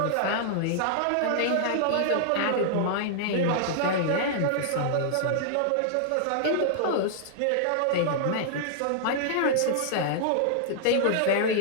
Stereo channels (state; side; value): different; both; correlation -0.01